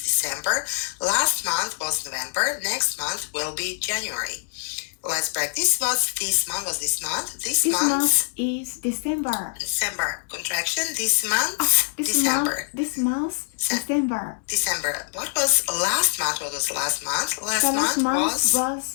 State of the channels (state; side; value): silent; right; digital silence